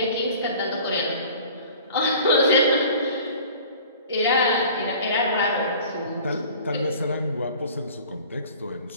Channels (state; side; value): inverted; both; correlation -0.45